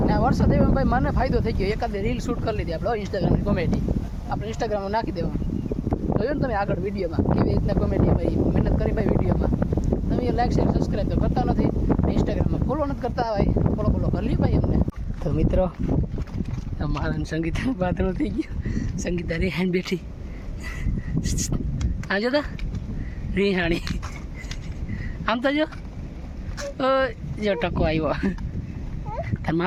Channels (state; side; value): identical; both; correlation 1.00